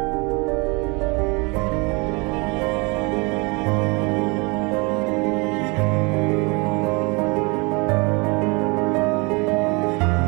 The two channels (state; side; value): quieter; left; 29.0 dB